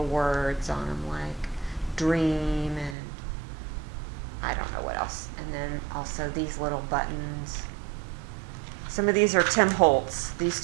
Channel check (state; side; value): drops out; left; at 3.0 s